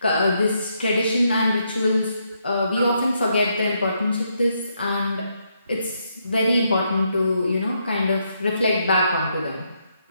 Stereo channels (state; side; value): inverted; both; correlation -0.77